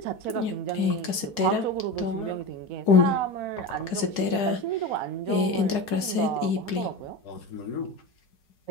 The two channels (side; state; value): right; late; 4.8 ms